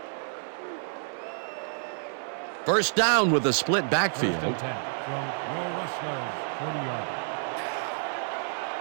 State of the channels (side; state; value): left; silent; 59 dB below the other